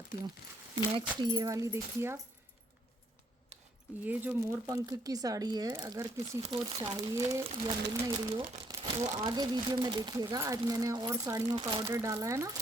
हूँ। नेक्स्ट ये वाली देखिए आप। ये जो मोर पंख की साड़ी है, अगर किसी को चाहिए या मिल नहीं रही हो तो आगे वीडियो में देखिएगा। आज मैंने और साड़ियों का ऑर्डर डाला है ना,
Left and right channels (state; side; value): normal; both; correlation 0.70